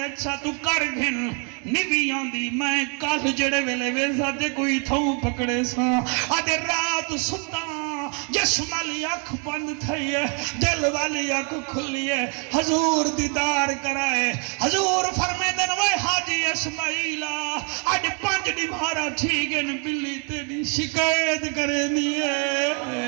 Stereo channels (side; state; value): left; quieter; 36.7 dB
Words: تو کر گھن نویاں دی، میں کال جڑے ویلے ویسا دے کوئی تھوں پکڑے سا، آدھے رات ستا جسم والی اکھ بند تھئی ہے، دل والی اکھ کھلی ہے، حضور دیدار کرائے، حضور فرمے دن وہ حاجی اسماعیلہ آج 5 نمہارا ٹھیکن بلی تیری شکایت کرے دیئے،